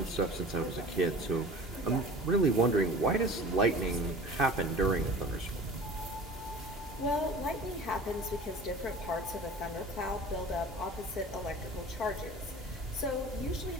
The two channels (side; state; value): both; normal; correlation 0.40